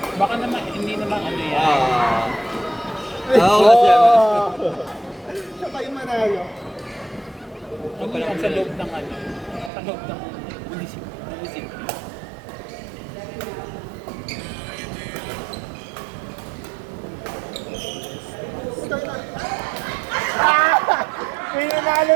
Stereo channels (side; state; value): left; drops out; at 9.7 s